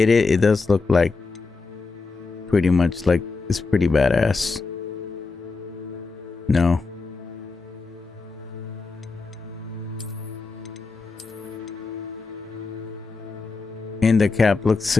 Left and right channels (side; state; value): right; quieter; 4.1 dB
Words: does look like pretty much like it's pretty badass. No. And the cap looks,